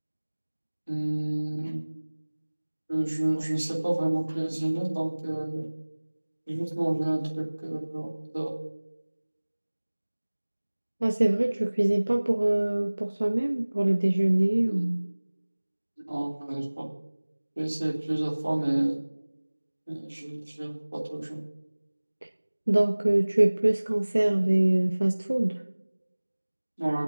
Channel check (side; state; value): both; inverted; correlation -1.00